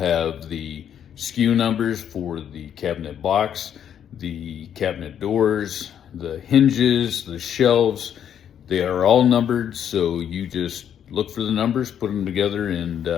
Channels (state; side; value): quieter; right; 9.2 dB